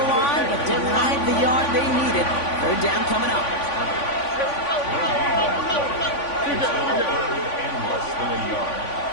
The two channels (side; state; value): right; late; 3.5 ms